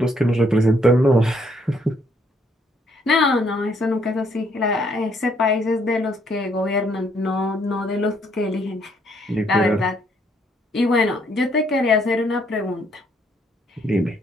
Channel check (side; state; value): both; normal; correlation 0.69